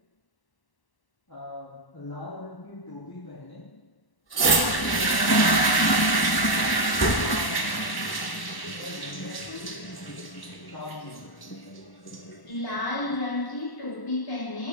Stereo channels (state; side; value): late; right; 1.1 ms